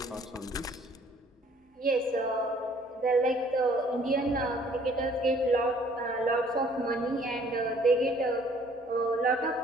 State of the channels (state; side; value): normal; both; correlation 0.58